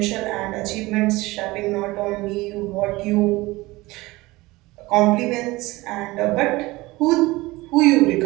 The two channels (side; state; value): left; quieter; 20.6 dB